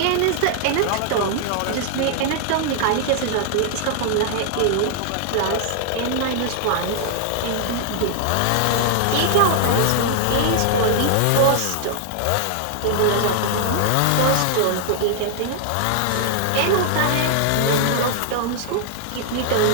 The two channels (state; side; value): different; both; correlation 0.00